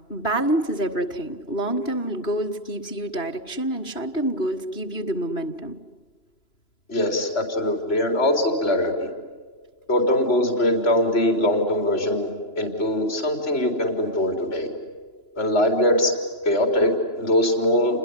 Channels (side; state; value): right; late; 3.0 ms